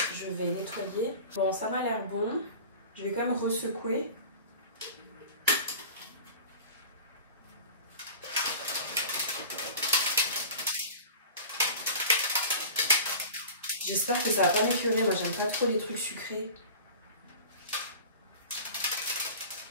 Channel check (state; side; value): inverted; both; correlation -0.37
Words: je vais nettoyer. Bon, ça m'a l'air bon. Je vais quand même resecouer. J'espère que ça va pas m'écœurer. Moi, j'aime pas trop les trucs sucrés.